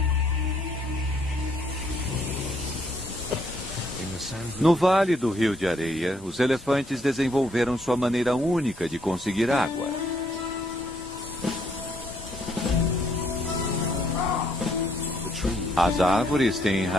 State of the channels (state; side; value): normal; both; correlation 0.70